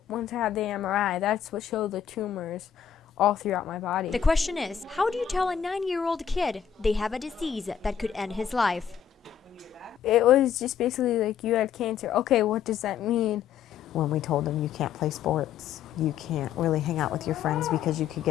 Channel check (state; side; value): quieter; right; 8.4 dB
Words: once I had the MRI, that's what showed the tumors all throughout my body. The question is, how do you tell a 9-year-old kid they have a disease that could end his life? It was just basically like, you had cancer. Okay, what does that mean? When we told him you can't play sports, you can't really hang out with your friends because you could